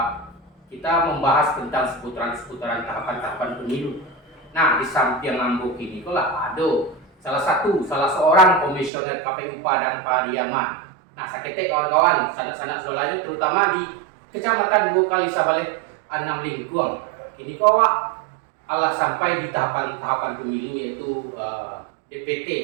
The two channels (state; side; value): drops out; left; at 8.9 s